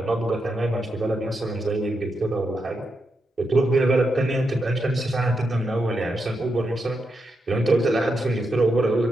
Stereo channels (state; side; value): normal; both; correlation 0.84